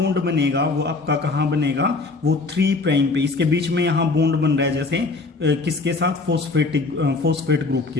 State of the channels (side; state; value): right; quieter; 3.7 dB